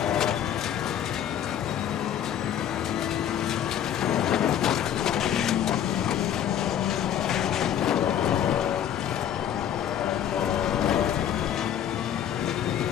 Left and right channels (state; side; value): quieter; right; 9.9 dB